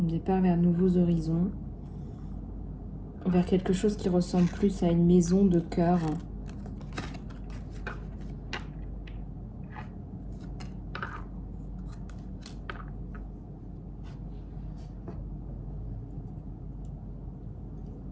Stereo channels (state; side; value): identical; both; correlation 1.00